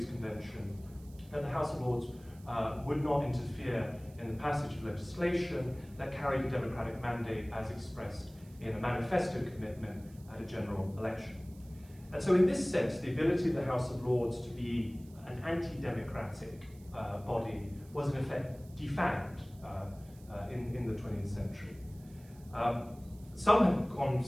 convention that the House of Lords would not interfere in the passage of legislation that carried a democratic mandate as expressed in a manifesto commitment at a general election. And so in this sense, the ability of the House of Lords to be an anti-democratic body was in effect defanged in the 20th century. Some have gone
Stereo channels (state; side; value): noise; right; hiss, 26 dB below the sound